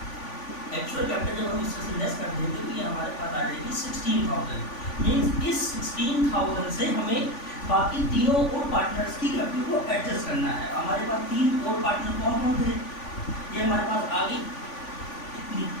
एक्चुअल कैपिटल जब हम इससे लेस कर देंगे तो ये हमारे पास आ जाएगी 16,000। मीन्स इस 16,000 से हमें बाकी तीनों और पार्टनर्स की कैपिटल को एडजस्ट करना है। हमारे पास 3 और पार्टनर कौन कौन थे? ये हमारे पास आ गई इतनी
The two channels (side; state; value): right; late; 3.5 ms